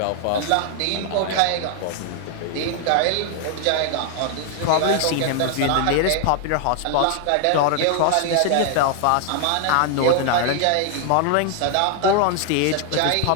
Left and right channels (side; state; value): both; different; correlation 0.00